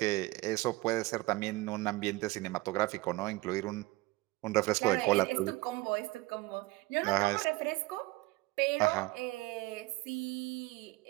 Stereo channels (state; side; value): quieter; left; 20.6 dB